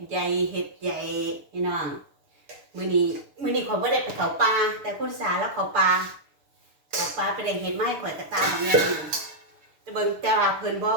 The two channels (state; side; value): late; left; 6.7 ms